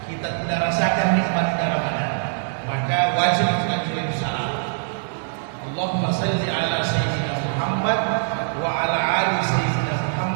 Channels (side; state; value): left; silent; digital silence